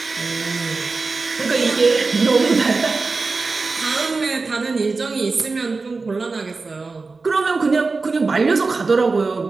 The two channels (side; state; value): left; quieter; 4.0 dB